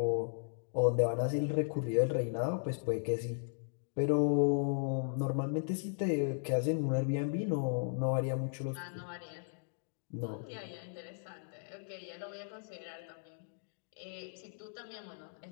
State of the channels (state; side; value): silent; right; digital silence